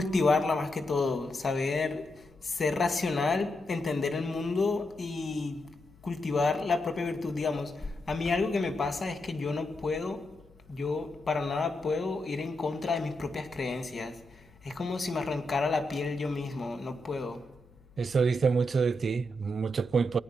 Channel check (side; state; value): left; noise; hum, 27 dB below the sound